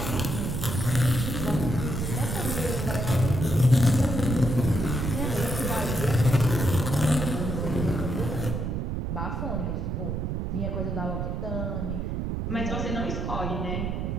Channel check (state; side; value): noise; right; rumble, 2 dB below the sound